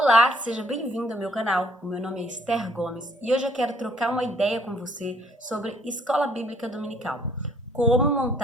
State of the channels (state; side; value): normal; both; correlation 0.63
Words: Olá, seja bem-vindo ao meu canal. O meu nome é Esther Gomes e hoje eu quero trocar uma ideia com você sobre escola bíblica dominical. Como